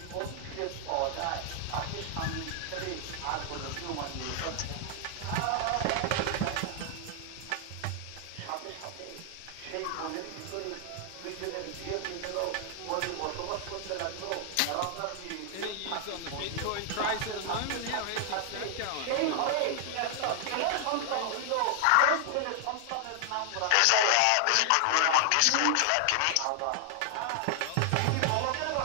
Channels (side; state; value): both; different; correlation 0.00